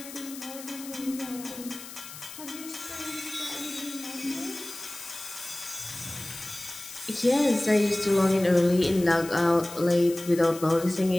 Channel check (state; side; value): noise; left; hiss, 13 dB below the sound